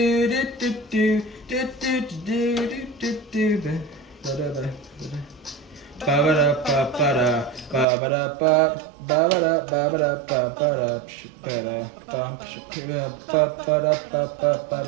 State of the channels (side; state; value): left; drops out; at 7.9 s